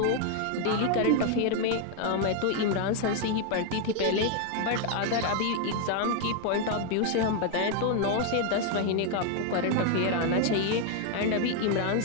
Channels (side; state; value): both; different; correlation 0.01